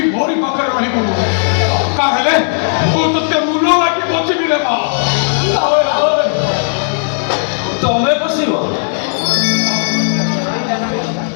ମୋରି ପାଖରେ ରହିବୁ କାହେଲେ ମୁଁ ତତେ ମୂଲ ଲାଗି ବଞ୍ଚିବି ରେ ମା ତମେ ବସିବ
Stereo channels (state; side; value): silent; right; digital silence